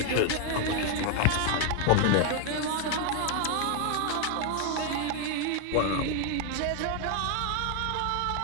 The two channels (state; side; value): different; both; correlation 0.01